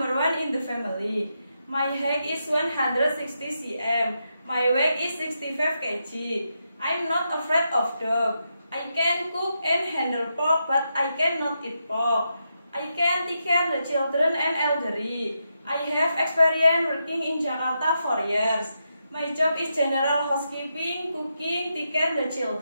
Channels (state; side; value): inverted; both; correlation -0.84